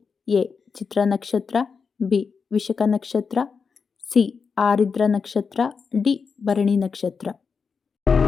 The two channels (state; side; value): quieter; right; 5.5 dB